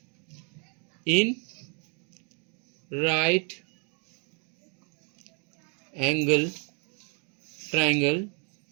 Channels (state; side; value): quieter; left; 37.1 dB